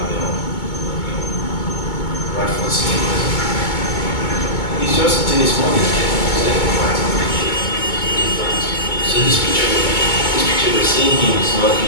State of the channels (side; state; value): right; late; 2.2 ms